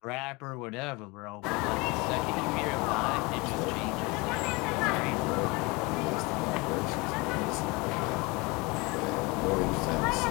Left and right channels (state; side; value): quieter; right; 25.7 dB